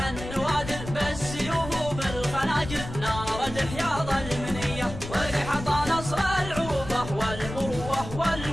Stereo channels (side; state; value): left; noise; rumble, 10 dB below the sound